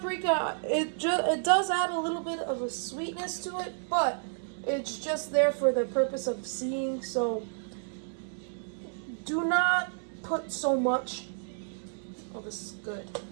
it does add a little bit of a sweetness to it, but it's just there for the purpose of seeing, so do not put so much. Oh, this is good.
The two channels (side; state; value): left; silent; digital silence